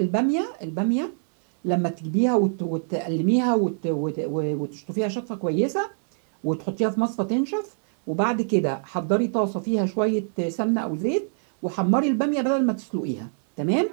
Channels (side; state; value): left; silent; digital silence